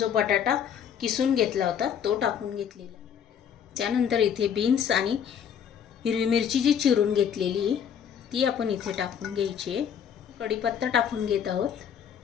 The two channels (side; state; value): right; quieter; 8.3 dB